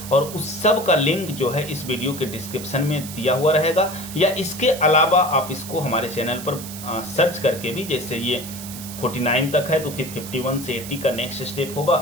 और उस सब का लिंक जो है इस वीडियो के डिस्क्रिप्शन में दिया हुआ रहेगा, या इसके अलावा आप इसको हमारे चैनल पर सर्च करके भी, जैसे ये 49 तक है तो फिर 51 से 80 का नेक्स्ट स्टेप होगा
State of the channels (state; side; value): noise; right; hiss, 12 dB below the sound